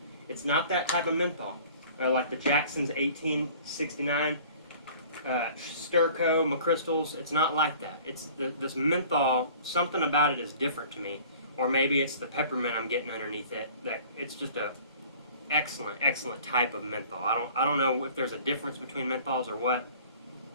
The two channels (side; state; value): both; inverted; correlation -0.48